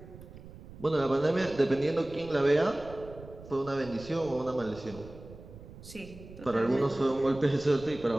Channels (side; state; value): right; noise; rumble, 17 dB below the sound